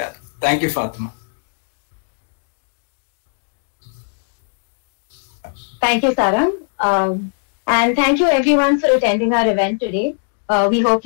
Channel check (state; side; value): silent; right; digital silence